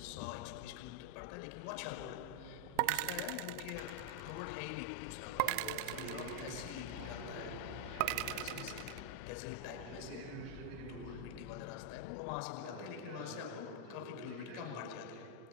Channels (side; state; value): both; different; correlation 0.00